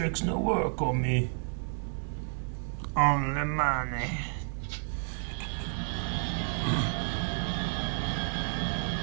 no work on me. Only money.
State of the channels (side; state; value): left; silent; digital silence